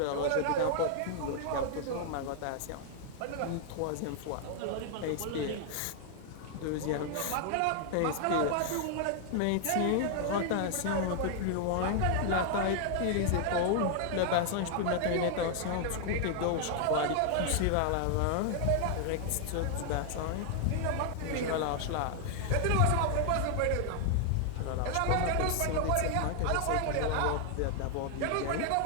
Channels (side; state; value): both; different; correlation 0.00